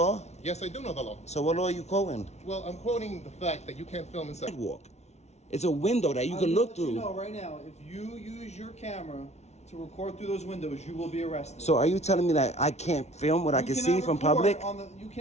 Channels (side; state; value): right; late; 0.32 ms